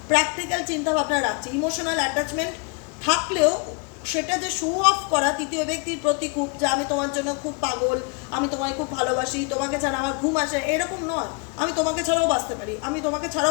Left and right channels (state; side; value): quieter; right; 33.4 dB